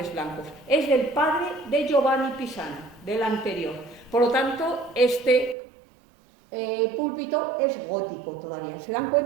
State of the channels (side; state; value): left; drops out; at 5.6 s